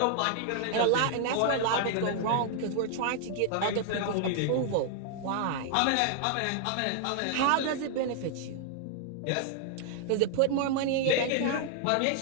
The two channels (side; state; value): both; different; correlation 0.00